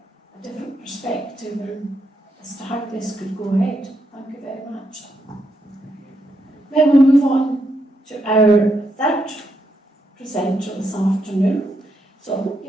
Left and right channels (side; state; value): both; normal; correlation 0.80